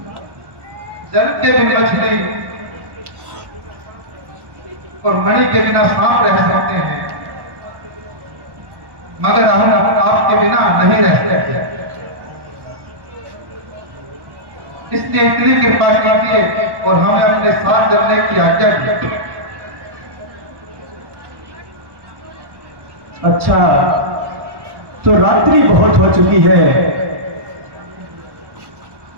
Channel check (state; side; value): late; left; 1.1 ms